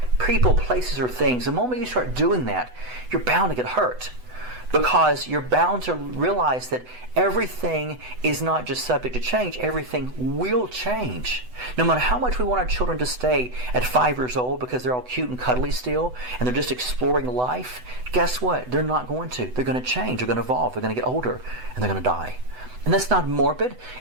people, places, or things, the moment you start doing that, you're bound to get hurt. Because you're bound to realize that everything is not just subject to change, everything will change. No matter how much we want our children to stay at 5 years old because they're all cute and cuddly still, and they're just exploring life, guess what? They're not going to. They're going to change, they're going to evolve, they're going to get older, and they're going to die. And that's not morbid.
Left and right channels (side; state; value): left; late; 8.0 ms